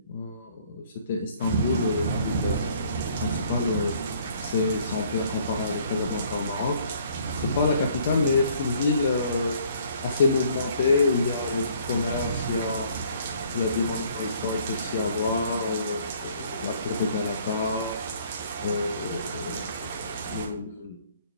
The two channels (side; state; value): both; inverted; correlation -0.60